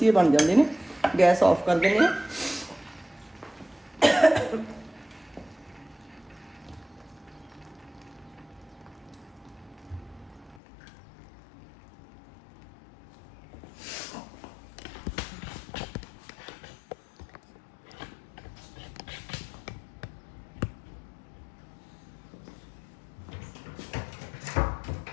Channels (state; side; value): drops out; right; at 10.6 s